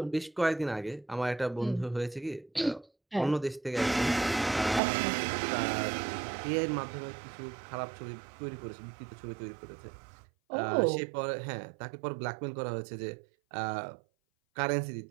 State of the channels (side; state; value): left; drops out; at 4.8 s